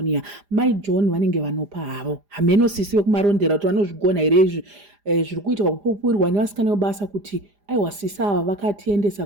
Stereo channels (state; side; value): late; left; 4.9 ms